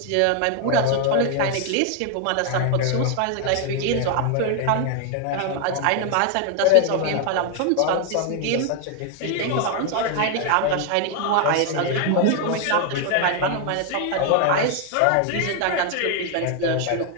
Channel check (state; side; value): different; both; correlation 0.00